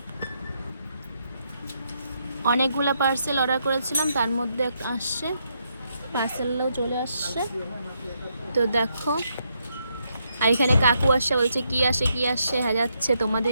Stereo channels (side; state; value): both; inverted; correlation -0.78